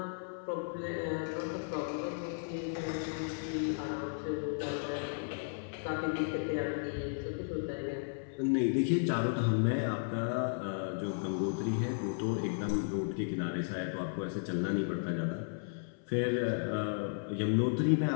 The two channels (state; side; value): silent; right; 55 dB below the other